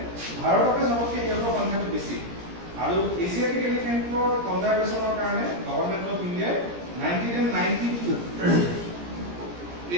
ভাৰততে চবতকৈ সিহঁতৰ সংখ্যাটো বেছি আৰু এছিয়াটিক এলিফেন্টৰ কনজাৰভেশ্যনৰ কাৰণে গভৰ্ণমেণ্ট অফ ইণ্ডিয়াই 1992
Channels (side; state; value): left; late; 17 ms